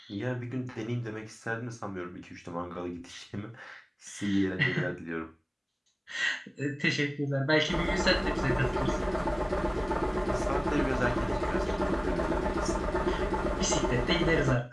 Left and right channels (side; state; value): both; identical; correlation 1.00